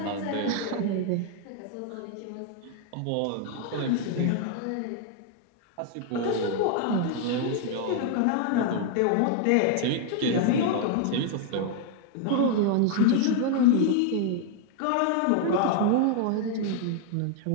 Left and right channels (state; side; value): different; both; correlation 0.00